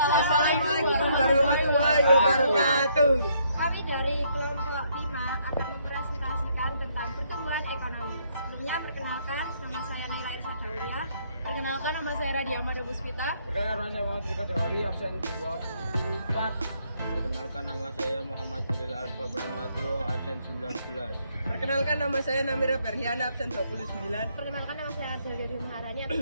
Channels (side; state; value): both; inverted; correlation -0.70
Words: warahmatullahi wabarakatuh. Kami dari kelompok 5 akan mempresentasikan tentang pertumbuhan ekonomi. Sebelumnya perkenalkan, nama saya Nila Irsa Daulia. Perkenalkan, nama saya Radia Mada Puspita. Perkenalkan, saya Muhammad Rika Jawari, absen 24. Perkenalkan, nama saya Muhammad Jalil Alfa Brahmato, absen 19. Perkenalkan, nama saya Namira Berhiana, absen 29. Perkenalkan, nama saya Adelia Maharani,